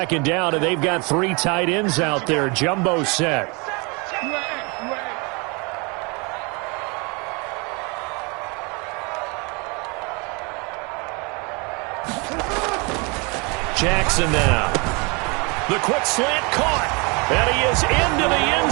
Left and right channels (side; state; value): left; quieter; 30.2 dB